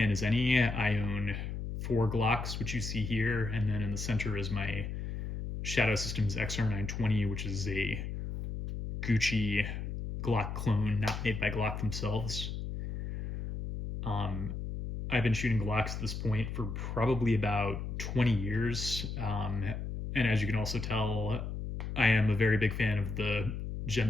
as any. I own 4 Glocks, which you see here, and then in the center is my Shadow Systems XR920, which is a Gucci Glock clone, not made by Glock themselves. I've been shooting Glocks at this point for probably about 20 years. And as you can also tell, I am a very big fan of the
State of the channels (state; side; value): noise; left; hum, 5 dB below the sound